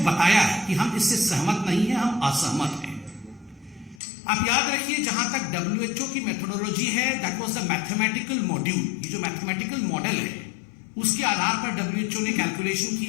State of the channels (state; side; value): drops out; right; at 4.0 s